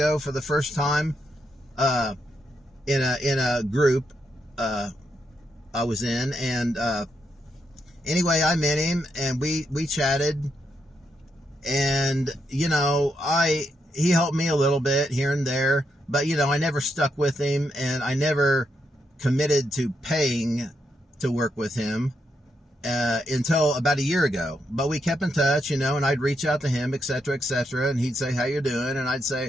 for the first time, in a group, I was in, and, anyway, I met him, and we chatted, and, he helped me a little bit here and there, but, I never stuck with him, and I never committed to paying to work with him, until about a year ago. But we kept in touch, and I'd reach out to him, etc., and he'd say, how you doing? And I'd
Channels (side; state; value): both; normal; correlation 0.81